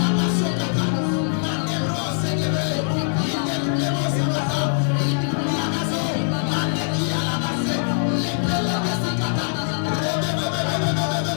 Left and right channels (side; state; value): right; silent; digital silence